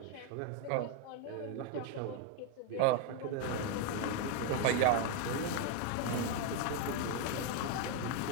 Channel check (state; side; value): different; both; correlation 0.01